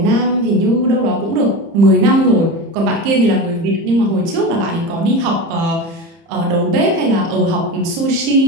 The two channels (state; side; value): late; left; 30 ms